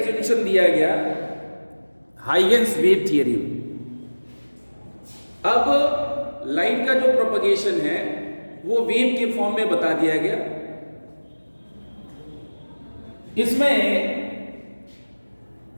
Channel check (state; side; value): inverted; both; correlation -1.00